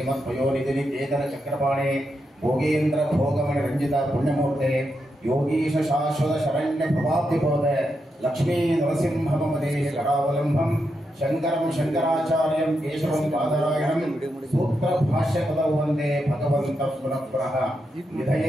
ಕೇತನ ಚಕ್ರಪಾಣೆ ಭೋಗೇಂದ್ರ ಭೋಗಮಣಿ ರಂಜಿತ ಪುಣ್ಯಮೂರ್ತೆ ಯೋಗೀಶ ಶಾಶ್ವತ ಶರಣ್ಯ ಪ್ರಭಾಬ್ಧಿಬೋಧ ಲಕ್ಷ್ಮೀ ನರಸಿಂಹಮದೇ ಕರಾವಲಂಬಂ ಶಂಕರಂ ಶಂಕರಾಚಾರ್ಯಂ ಕೇಶವಂ ಬಾದರಾಯಣಂ ಸೂತ್ರ ಭಾಷ್ಯ ಪದೌ ವಂದೇ ಭಗವಂತ ಪುನಃ ಪುನಃ.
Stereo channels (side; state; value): both; normal; correlation 0.84